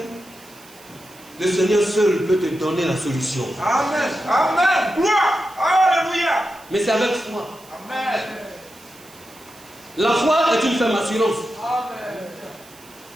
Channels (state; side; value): noise; right; hiss, 23 dB below the sound